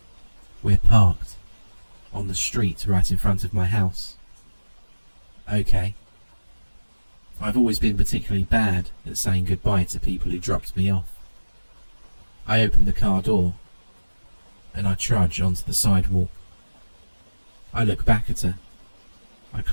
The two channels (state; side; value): inverted; both; correlation -1.00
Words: We're parked on the street right in front of my house. Okay. I've always been particularly bad at saying goodbye to people who dropped me off. I open the car door and I trudge onto the sidewalk. I look back at her. I